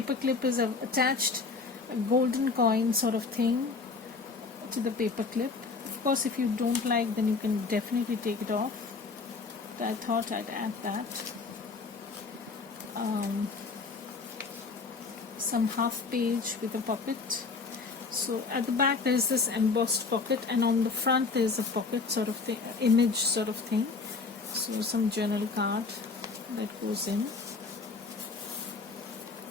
clip is I've attached a golden coin sort of thing to the paper clip. Of course, if you don't like, then you can definitely take it off, but I thought I'd add that. Some half page with a pocket. So at the back there is this embossed pocket, and on the front there is a pocket sort of thing, image sort of thing. So some journal card that goes in.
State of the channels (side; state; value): right; quieter; 4.3 dB